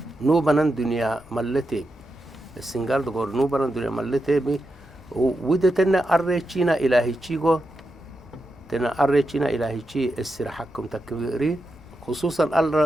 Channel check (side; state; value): left; noise; rumble, 27 dB below the sound